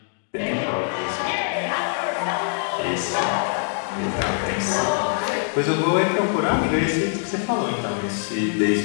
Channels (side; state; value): right; silent; digital silence